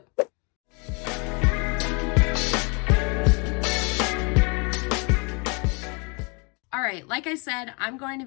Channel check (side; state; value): right; quieter; 32.3 dB